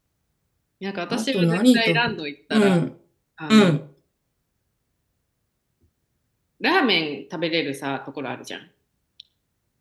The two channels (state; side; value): identical; both; correlation 1.00